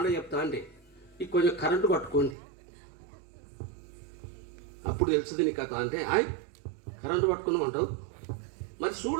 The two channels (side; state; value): left; drops out; at 2.4 s